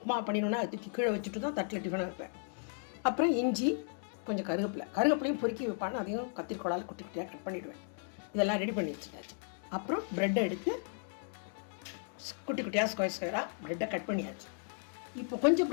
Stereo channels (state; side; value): silent; right; 54 dB below the other